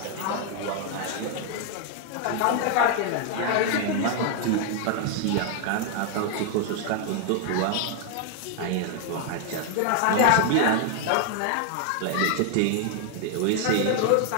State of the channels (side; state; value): both; different; correlation 0.00